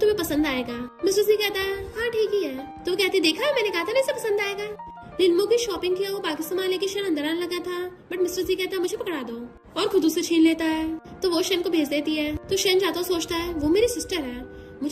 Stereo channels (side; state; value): both; identical; correlation 1.00